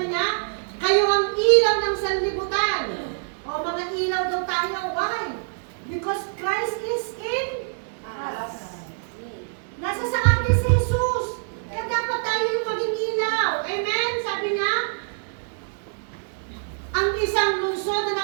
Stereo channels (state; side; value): silent; left; digital silence